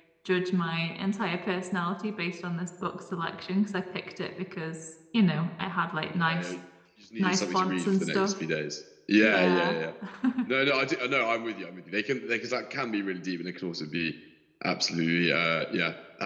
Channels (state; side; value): identical; both; correlation 1.00